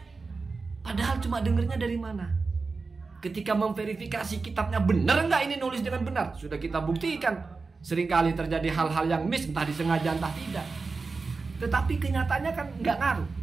Padahal cuma dengernya dari mana? Ketika memverifikasi kitabnya benar nggak ini nulis dengan benar, sudah kita buktikan. Seringkali terjadi hal-hal yang miss, entah disengaja entah tidak. Tetapi kenyataannya kan nggak ngaruh.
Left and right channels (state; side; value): quieter; left; 4.2 dB